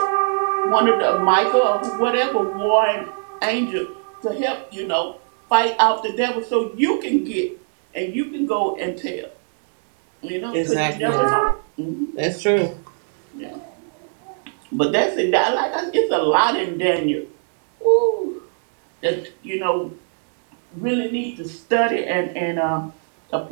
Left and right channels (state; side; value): silent; left; 65 dB below the other